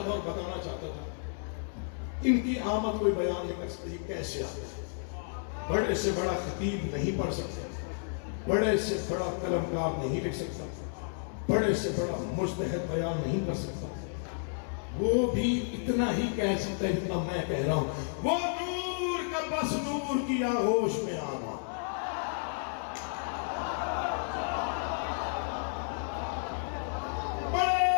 تھا اور بتانا چاہتا تھا ان کی آمد کوئی بیان نہیں کر سکتی، کیسے آتے ہیں، بڑے سے بڑا خطیب نہیں پڑھ سکتے، بڑے سے بڑا قلمکار نہیں لکھ سکتا، بڑے سے بڑا مجتہد بیان نہیں کر سکتا، وہ بھی اتنا ہی کہہ سکتا ہے جتنا میں کہہ رہا ہوں، وہ نور کا بس نور کی آغوش میں آنا، بڑے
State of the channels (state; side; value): silent; right; digital silence